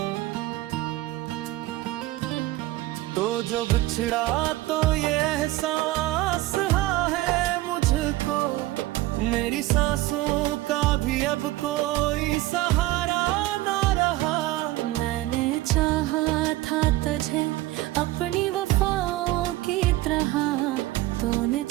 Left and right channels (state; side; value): quieter; left; 17.4 dB